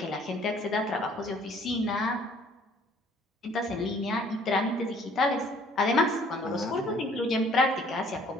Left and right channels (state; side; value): normal; both; correlation 0.58